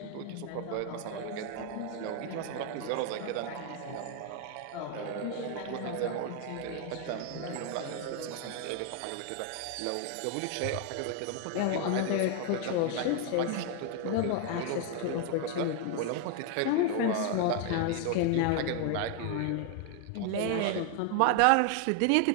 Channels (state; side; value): different; both; correlation 0.01